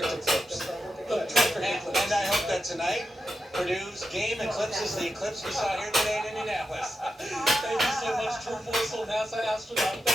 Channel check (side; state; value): both; normal; correlation 0.89